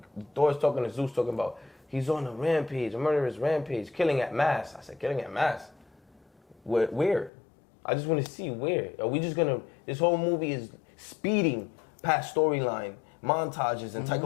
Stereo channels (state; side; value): drops out; right; at 7.3 s